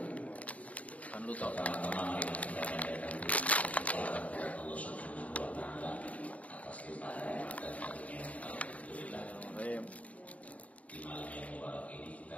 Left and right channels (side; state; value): right; late; 0.068 ms